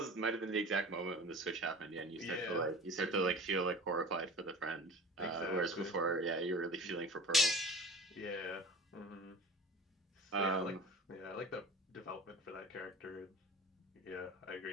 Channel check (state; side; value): normal; both; correlation 0.38